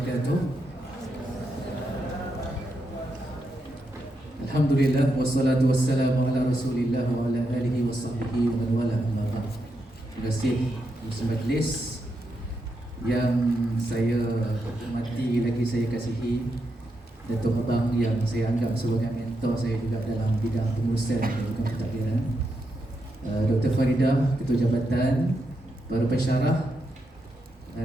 Alhamdulillah wassalatu wassalamu ala Rasulillah wa ala alihi wa sahbihi wa man wala amma ba'd. Terima kasih majlis yang saya hormati lagi saya kasihi, Datuk Abang yang saya anggap sebagai mentor saya juga dalam bidang pengurusan dan juga pentadbiran, Dr. Faridah, Ketua Jabatan, para pensyarah,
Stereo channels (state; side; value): normal; both; correlation 0.84